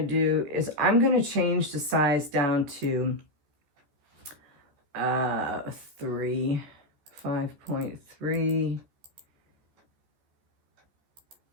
to do is I'm going to change the size down to 5.3.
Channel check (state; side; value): late; left; 14 ms